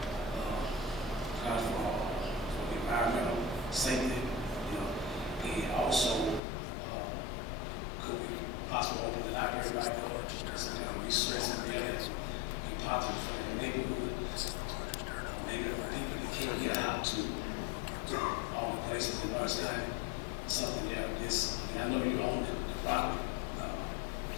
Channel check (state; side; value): drops out; right; at 6.4 s